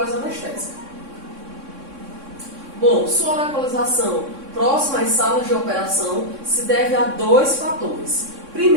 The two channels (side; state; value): left; late; 3.6 ms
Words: Bom, sua localização próxima às salas de operação se deve a dois fatores.